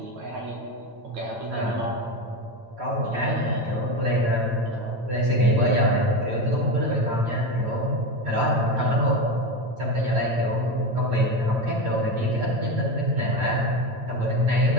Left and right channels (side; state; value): left; late; 8.9 ms